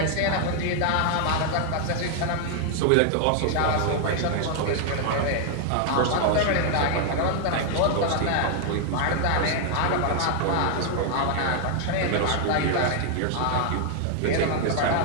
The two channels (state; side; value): different; both; correlation 0.00